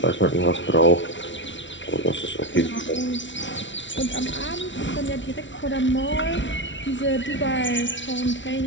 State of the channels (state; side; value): late; right; 0.55 ms